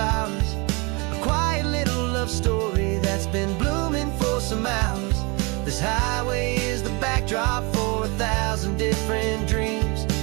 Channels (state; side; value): quieter; left; 28.4 dB